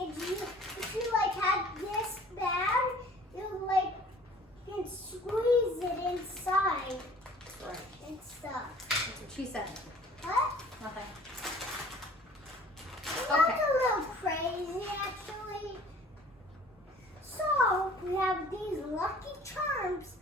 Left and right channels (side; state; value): both; normal; correlation 0.50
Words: if you like have this bag, you like can squeeze it inside Right. and stuff. That's what she said. What? Nothing. That's a little crazy actually. So we have these lucky charms.